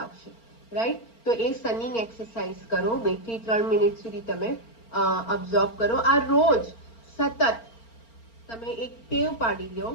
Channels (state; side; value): late; right; 4.4 ms